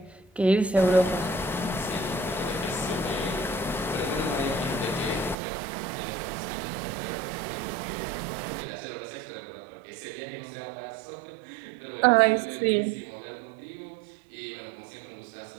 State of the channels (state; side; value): drops out; left; at 5.4 s